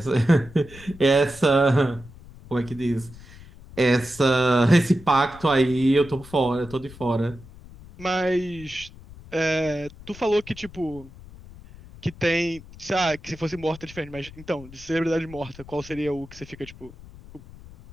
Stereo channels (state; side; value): noise; left; rumble, 19 dB below the sound